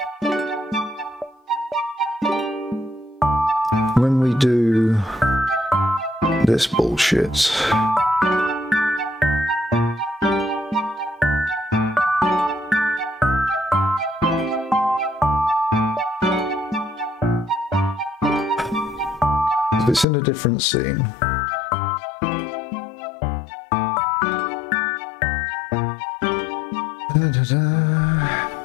When we do this bullshit, if it's in a different scene,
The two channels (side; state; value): right; drops out; at 20.1 s